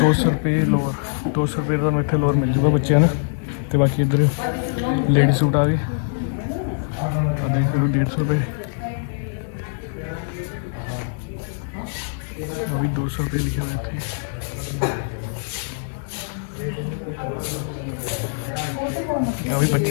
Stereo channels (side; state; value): right; silent; digital silence